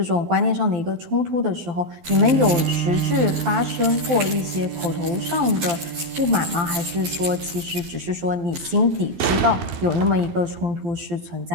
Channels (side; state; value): left; late; 12 ms